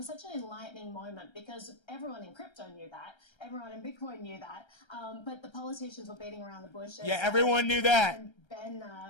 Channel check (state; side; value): late; right; 1.3 ms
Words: such an enlightening moment because everyone in crypto knew that, everyone in Bitcoin knew that, but the politicians were beating around the bush. Yeah, everyone knew that.